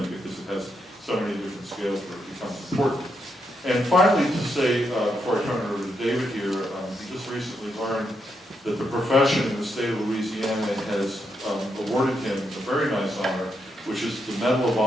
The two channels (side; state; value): both; normal; correlation 0.81